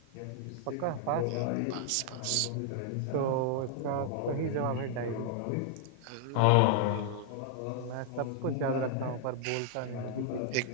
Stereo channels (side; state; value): both; different; correlation 0.00